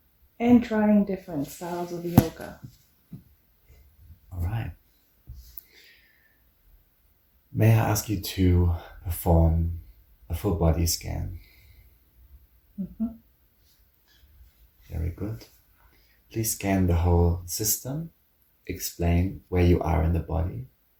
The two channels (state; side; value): identical; both; correlation 1.00